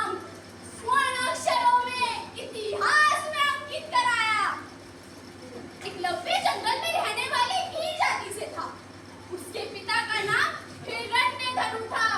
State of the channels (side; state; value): both; identical; correlation 1.00